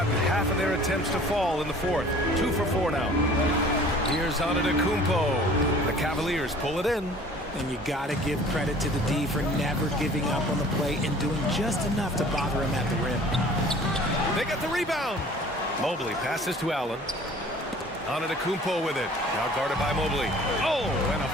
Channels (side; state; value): both; normal; correlation 0.49